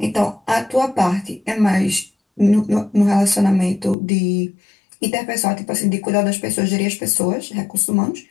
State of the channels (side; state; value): right; drops out; at 4.0 s